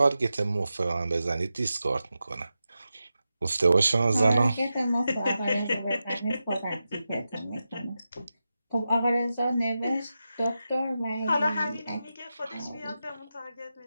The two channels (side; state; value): both; inverted; correlation -0.91